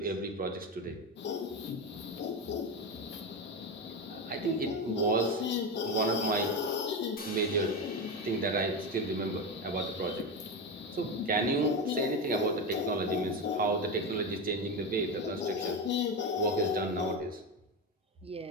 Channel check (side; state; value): both; normal; correlation 0.17